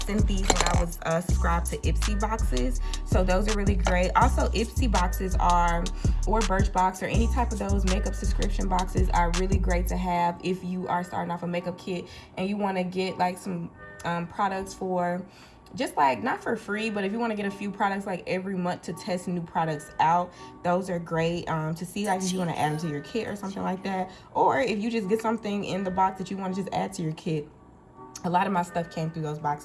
sent these when I was subscribed to Ipsy boxes. So those are really great. Also, Ipsy boxes are, or Birchbox, or any type of those makeup subscription boxes are really great to have if you are starting off a makeup kit and you want to get like some products for just like, not for free, but if you want to get a few products like every month to test new products out, those are great to see, like if you want to add them to your kit or something like that, or if you just get something in the box that you want to just add to your kit. A lot of my stuff came through those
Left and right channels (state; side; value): identical; both; correlation 1.00